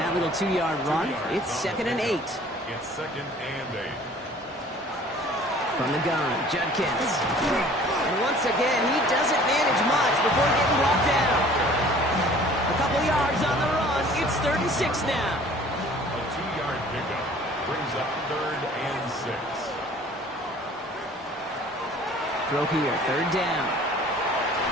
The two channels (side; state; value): both; normal; correlation 0.51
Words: that little 2-yard run, it's 2nd and 8. It's 2nd and 8. From the gun, Judkins. And once again, he doesn't manage much before getting brought down. A couple yards on the run. It's 3rd and 6 now. A 2-yard pickup brings up 3rd and 6. Throw here, 3rd down.